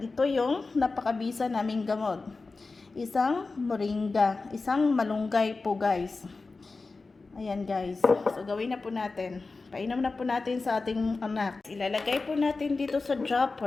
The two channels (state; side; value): quieter; right; 3.8 dB